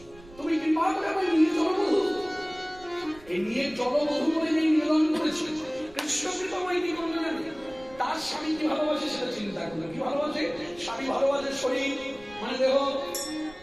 তুমি কৃপা করে আমার নিয়ে জলবধূ, এই নিয়ে জলবধূ বলে নেই নিবেদন করেছে। কৃষ্ণ কৃপাময় কি করবে না? তার স্বামী কি ভালোবাসে সেটা চিন্তা করলো। কি ভালোবাসে? স্বামী ভালোবাসে শরীর মানে দেহ,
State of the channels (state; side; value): noise; right; rumble, 23 dB below the sound